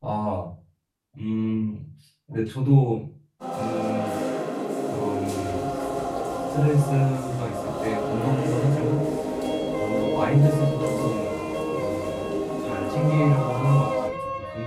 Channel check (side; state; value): both; identical; correlation 1.00